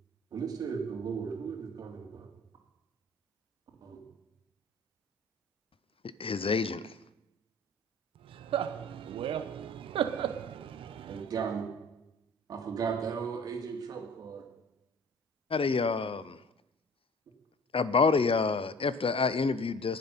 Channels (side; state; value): both; normal; correlation 0.46